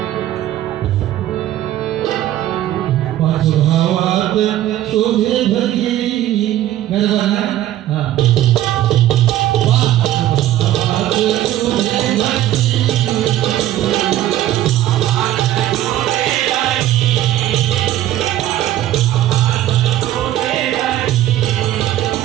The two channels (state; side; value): quieter; left; 13.4 dB